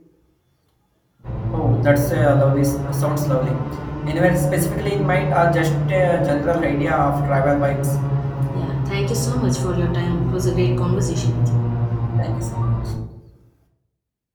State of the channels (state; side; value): identical; both; correlation 1.00